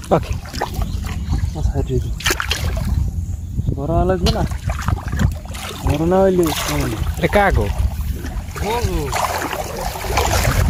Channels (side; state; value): both; identical; correlation 1.00